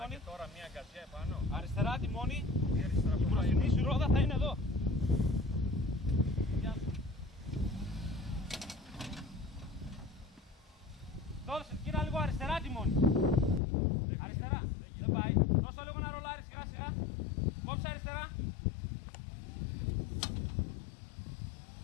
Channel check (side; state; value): right; drops out; at 13.6 s